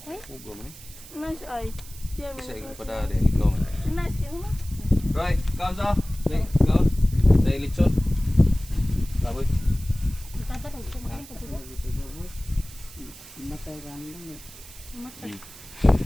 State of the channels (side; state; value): right; noise; hiss, 17 dB below the sound